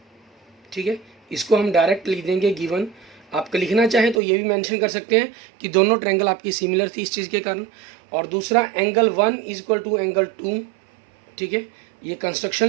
ठीक है, इसको हम डायरेक्ट लिख देंगे गिवन। आप लिखना चाहें तो ये भी मेंशन कर सकते हैं कि दोनों ट्रायंगल आपकी सिमिलर थी इस चीज़ के कारण। और दूसरा angle 1 is equal to angle 2, ठीक है, ये कंस्ट्रक्शन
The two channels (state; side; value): drops out; left; at 4.2 s